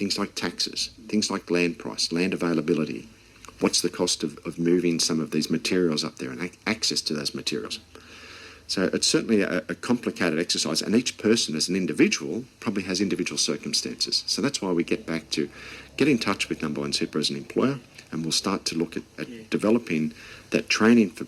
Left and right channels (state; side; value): identical; both; correlation 1.00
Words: like taxes, things like land price, land availability. What's the cost of moving some of these materials up there and access to those materials? So it's certainly a complicated exercise, and each person as an individual probably has individual circumstances. So that's why we get back to get in touch with Nambawan Super as an employer, and we'll start to look at developing that training for